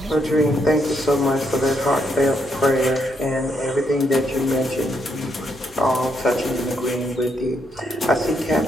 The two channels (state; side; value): normal; both; correlation 0.76